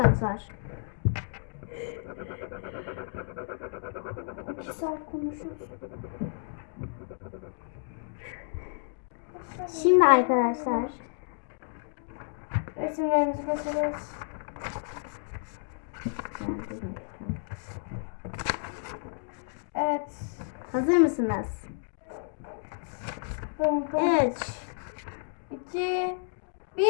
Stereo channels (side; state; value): right; silent; digital silence